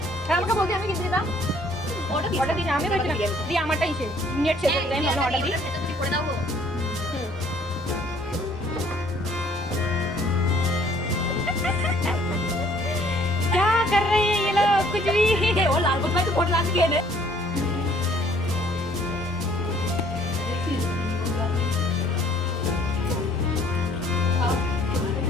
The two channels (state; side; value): normal; both; correlation 0.60